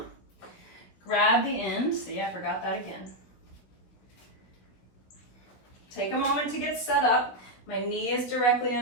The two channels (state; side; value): late; right; 16 ms